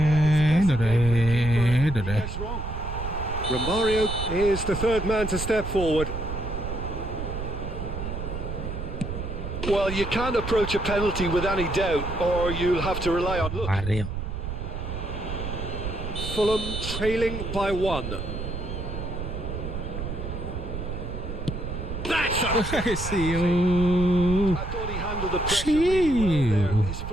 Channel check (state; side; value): noise; right; rumble, 6 dB below the sound